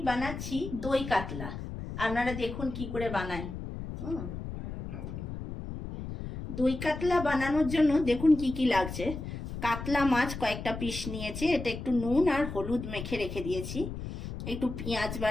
বানাচ্ছি দই কাতলা। আপনারা দেখুন কি করে বানাই। দই কাতলা বানানোর জন্য দেখুন কি কি লাগছে। কাতলা মাছ কয়েকটা পিস নিয়েছি, এটা একটু নুন আর হলুদ মেখে রেখে দিয়েছি। একটু পেঁয়াজ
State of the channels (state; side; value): noise; left; rumble, 8 dB below the sound